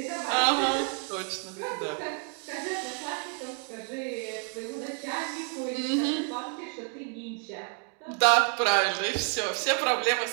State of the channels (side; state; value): left; quieter; 39.8 dB